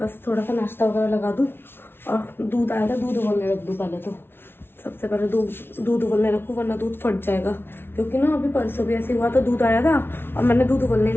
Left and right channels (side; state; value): right; late; 0.11 ms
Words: थोड़ा सा नाश्ता वगैरह लगा दूँ। और दूध आया था, दूध उबलने रख दूँ पहले, तो सबसे पहले दूध उबलने रखूँ, वरना दूध फट जाएगा। क्योंकि ना अभी परसों भी ऐसे हुआ था, दूध आया था और मैंने दूध उबलने